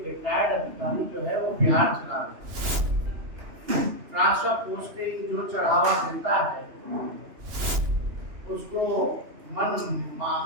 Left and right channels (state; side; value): late; left; 2.9 ms